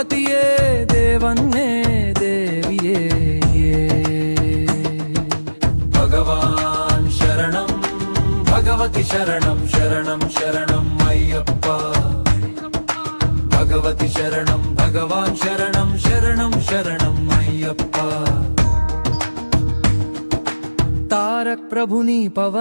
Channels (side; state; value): both; inverted; correlation -1.00